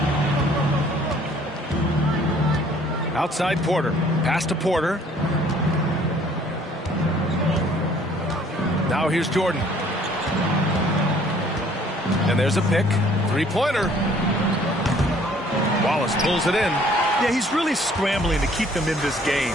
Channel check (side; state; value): both; normal; correlation 0.58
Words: Outside Porter. Pass to Porter. Now here's Jordan. And there's a pick. 3-pointer. Wallace pulls it in. Yeah, he's really scrambling to keep them in this game.